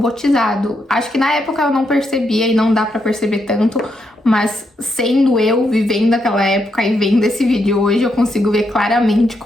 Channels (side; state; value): both; normal; correlation 0.80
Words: Acho que na época eu não percebia e não dá pra perceber tanto, mas sendo eu, vivendo aquela época e vendo esse vídeo hoje, eu consigo ver claramente